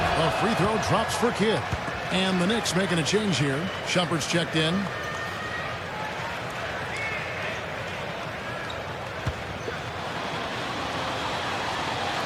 A free throw drops for Kidd. And the Knicks making a change here. Shumpert's checked in.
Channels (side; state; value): both; identical; correlation 1.00